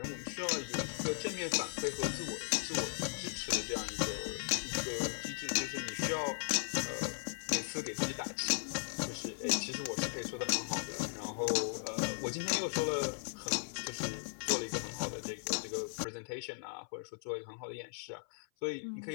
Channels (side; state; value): right; silent; 53 dB below the other